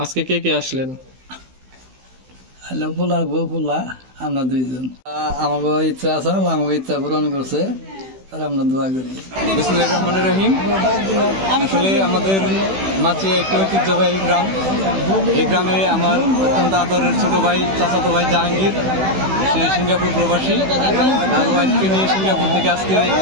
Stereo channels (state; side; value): late; left; 16 ms